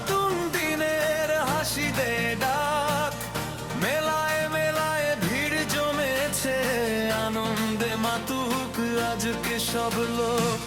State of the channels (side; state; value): both; identical; correlation 1.00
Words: দিনের হাসি দে ডাক, মেলায় মেলায় ভিড় জমেছে, আনন্দে মাতুক আজকে সব লোক।